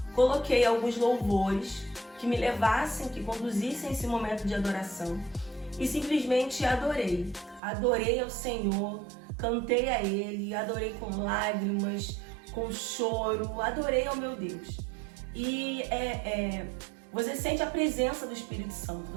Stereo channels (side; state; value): left; drops out; at 7.6 s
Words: Coloquei alguns louvores que me levassem, que conduzissem esse momento de adoração e simplesmente adorei. Adorei ao Senhor, cantei a Ele, adorei com lágrimas, com choro, adorei ao meu Deus. E você sente a presença do Espírito Santo,